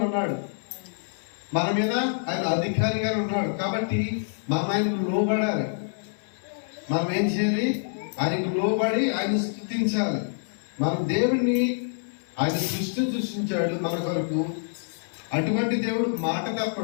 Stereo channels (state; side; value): silent; right; 61 dB below the other